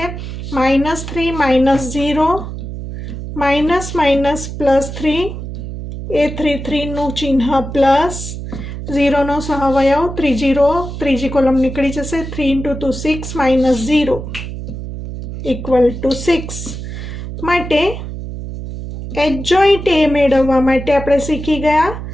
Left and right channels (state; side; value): noise; right; hum, 8 dB below the sound